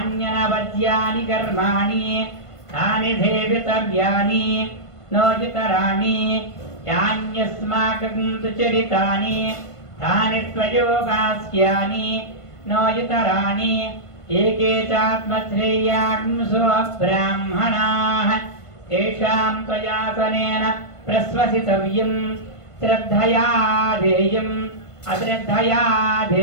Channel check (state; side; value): late; right; 1.5 ms